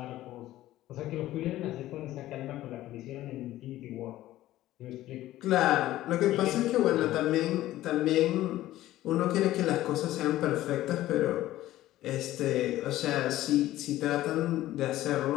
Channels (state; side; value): quieter; right; 15.0 dB